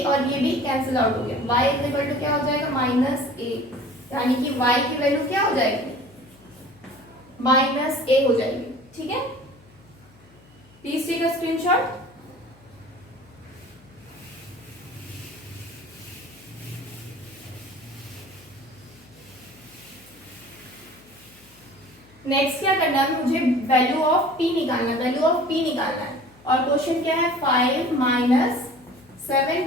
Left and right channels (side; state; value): left; noise; hum, 27 dB below the sound